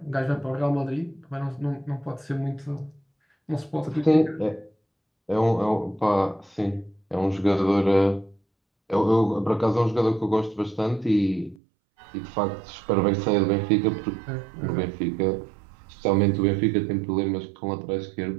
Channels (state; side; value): drops out; left; at 11.6 s